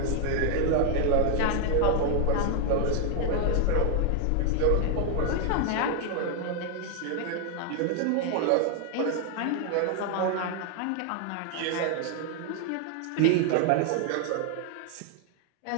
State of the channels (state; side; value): different; both; correlation 0.00